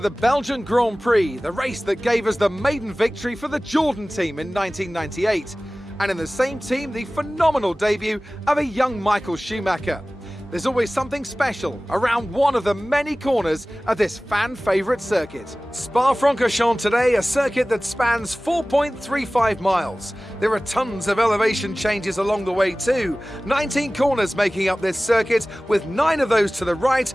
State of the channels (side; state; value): both; normal; correlation 0.98